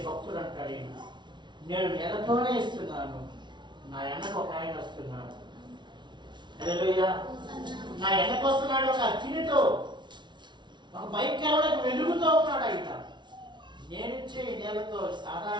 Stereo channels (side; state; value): left; late; 0.22 ms